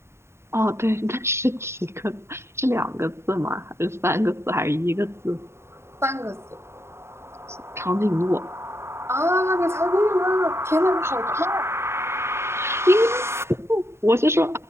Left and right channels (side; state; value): left; late; 0.13 ms